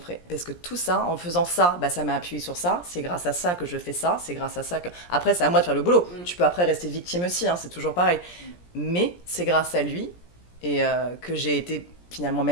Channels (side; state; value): right; late; 17 ms